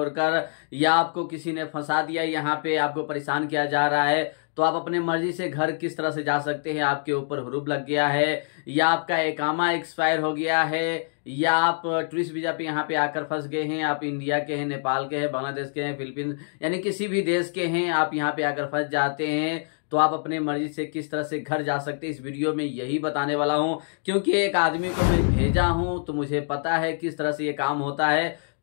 या आपको किसी ने फंसा दिया, यहाँ पे आपको परेशान किया जा रहा है, तो आप अपने मर्जी से घर किस तरह से जा सकते हैं। आपके ऊपर हुरूब लग गया है, या आपका इकामा एक्सपायर हो गया है, या आप टूरिस्ट वीजा पे यहाँ पे आकर फंस गए हैं। आप इंडिया के हैं, नेपाल के हैं, बांग्लादेश के हैं, फिलीपींस यानी किसी भी देश के हैं, आप यहाँ पे आकर फंस जाते हैं, तो आप अपने मर्जी से किस तरह से घर जा सकते हैं। इस वीडियो में यही बताने वाला हूं, क्योंकि एक आदमी को मैं भेजा हूं तो मुझे पता है किस तरह से ये काम होता है।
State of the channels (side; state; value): right; silent; digital silence